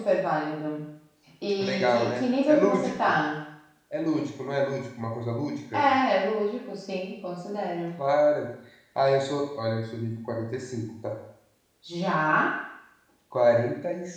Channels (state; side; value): identical; both; correlation 1.00